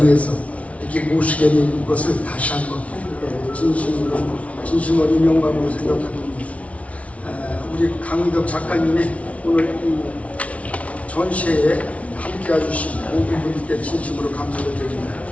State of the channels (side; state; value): right; late; 0.065 ms